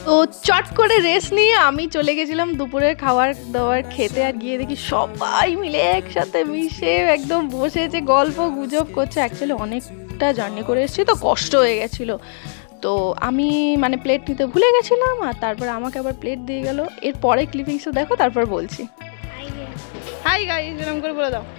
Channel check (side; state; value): right; silent; digital silence